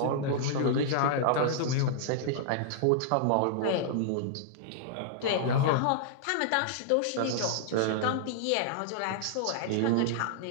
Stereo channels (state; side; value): different; both; correlation -0.01